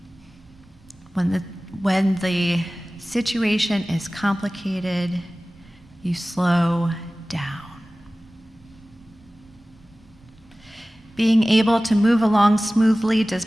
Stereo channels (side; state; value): both; normal; correlation 0.97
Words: When the situation is complicated, you slow down. Being able to move along smoothly does